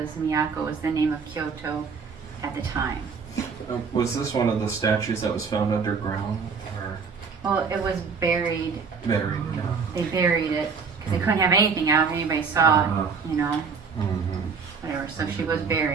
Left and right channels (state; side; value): quieter; left; 5.5 dB